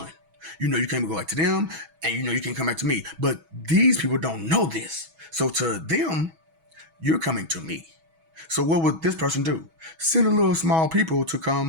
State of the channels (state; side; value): late; left; 6.2 ms